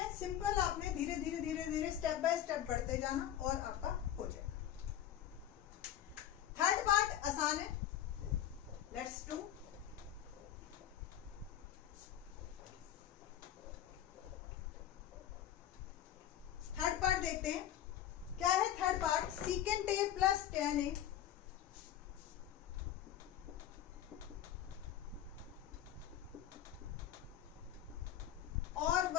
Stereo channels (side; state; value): right; quieter; 11.3 dB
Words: सिंपल। आपने धीरे धीरे धीरे धीरे स्टेप बाय स्टेप बढ़ते जाना और आपका हो जाएगा। थर्ड पार्ट आसान है, लेट्स डू। थर्ड पार्ट देखते हैं क्या है। Third part secant A plus tan ए और